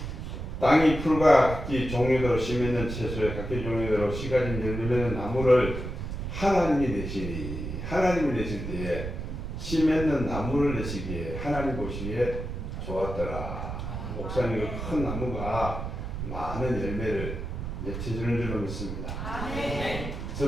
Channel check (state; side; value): noise; right; rumble, 6 dB below the sound